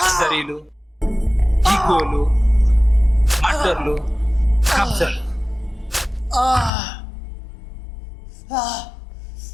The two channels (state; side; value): drops out; right; at 6.7 s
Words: ఈగోలు, మర్డర్లు, కబ్జాలు?